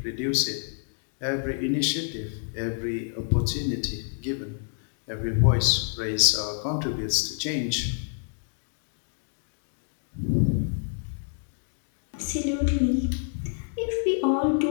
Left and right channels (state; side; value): silent; right; digital silence